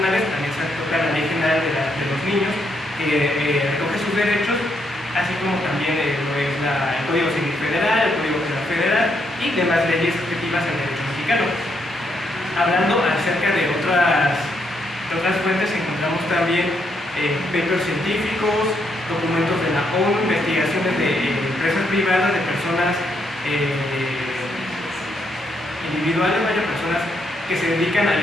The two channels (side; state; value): both; normal; correlation 0.77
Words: también se toca la Ley General de los Niños, que recoge sus derechos, así como también lo es el Código Civil Federal, el Código Penal Federal y demás leyes objetivas al derecho mexicano. Hablando acerca de otras fuentes, encontramos también papers científicos, documentos de la ONU, investigaciones de empresas privadas, de personas individuales, personas que se dedican